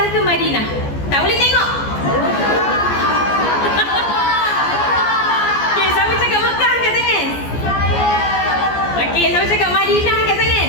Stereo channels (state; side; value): late; right; 14 ms